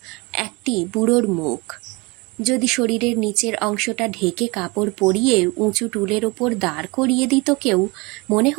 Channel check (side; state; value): left; quieter; 26.3 dB